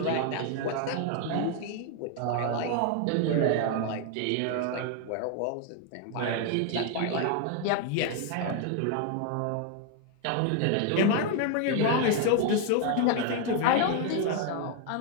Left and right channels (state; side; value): different; both; correlation 0.01